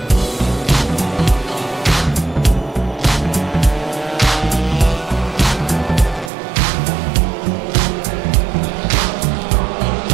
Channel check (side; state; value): left; drops out; at 6.3 s